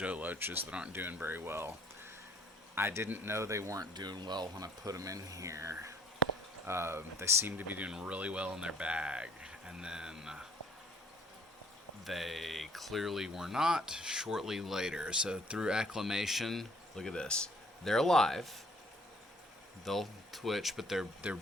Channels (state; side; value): normal; both; correlation 0.59